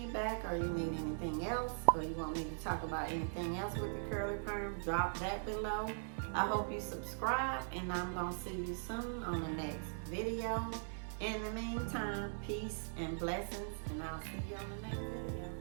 or you need anything else, or you want me to talk about anything else with the curly perm, drop that below. I hope you subscribe, and I'm going to see you soon on the next video. In the meantime, peace and blessings, and I'll see you on the next video.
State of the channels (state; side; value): silent; left; 51 dB below the other